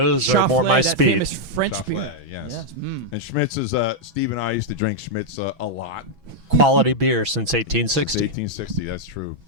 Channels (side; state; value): left; late; 6.1 ms